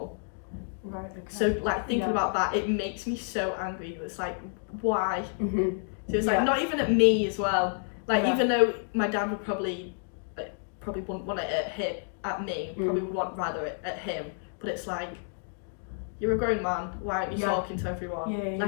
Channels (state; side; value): silent; right; 58 dB below the other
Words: Right. Okay. So like thinking about that, it makes me so angry. It's like, why? So it's like not even at me as well. Like even though my dad would probably wouldn't want it at me, probably would want rather it at him. But it's like, you're a grown man, why aren't you talking to everyone?